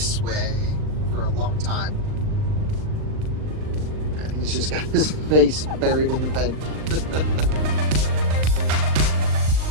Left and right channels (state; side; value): late; left; 39 ms